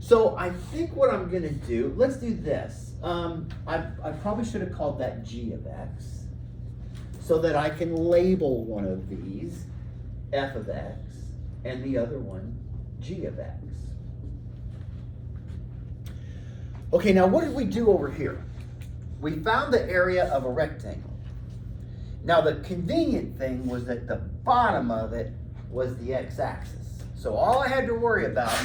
I think what I'm going to do, let's do this. I probably should have called that g of x, so that I can label one of these f of x and the other one g of x. Okay, now what did we do over here? We found the area of a rectangle. Now the convenient thing was that the bottom of it was the x-axis. So all I had to worry about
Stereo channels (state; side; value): identical; both; correlation 1.00